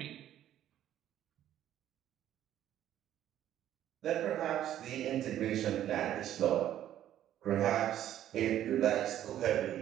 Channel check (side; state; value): left; quieter; 11.7 dB